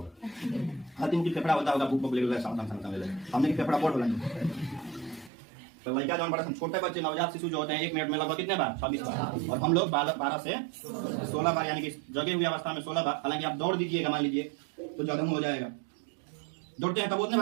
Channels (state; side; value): drops out; left; at 5.3 s